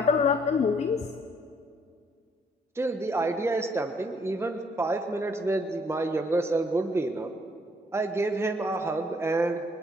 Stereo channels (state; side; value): normal; both; correlation 0.65